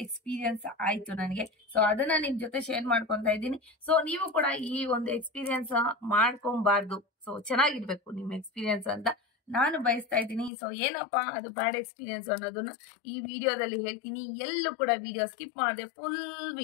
ಎಕ್ಸ್ಪೀರಿಯನ್ಸ್ ಆಯ್ತು ನನಗೆ. ಸೊ ಅದನ್ನ ನಿಮ್ ಜೊತೆ ಶೇರ್ ಮಾಡ್ಕೊಂತ ಇದ್ದೀನಿ. ಸೊ ನೀವು ಕೂಡ ಈ ಒಂದು ಎಕ್ಸ್ಪೀರಿಯನ್ಸ್ ಮಾಡ್ಕೊಬಾರ್ದು. ಸೊ ಚೆನ್ನಾಗಿರ್ಬೇಕು ನಿಮ್ ಎಕ್ಸ್ಪೀರಿಯನ್ಸ್ ಅಂತ ನಾನು ಬಯಸ್ತಾ ಇದ್ದೀನಿ. ಸೊ ಏನಪ್ಪಾ ಅದು ಬ್ಯಾಡ್ ಎಕ್ಸ್ಪೀರಿಯನ್ಸ್ ಅನ್ನೋದನ್ನ ಈ ವಿಡಿಯೋದಲ್ಲಿ ಹೇಳ್ತೀನಿ. ಎಲ್ಲೂ ಕೂಡ ವಿಡಿಯೋ ಸ್ಕಿಪ್ ಮಾಡದೆ ಫುಲ್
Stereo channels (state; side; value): drops out; right; at 10.5 s